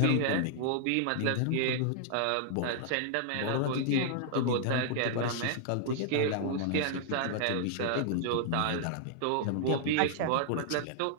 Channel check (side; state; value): both; different; correlation -0.01